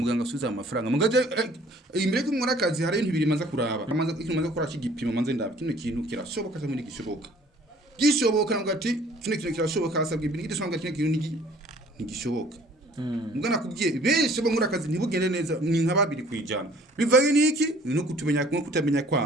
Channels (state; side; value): normal; both; correlation 0.54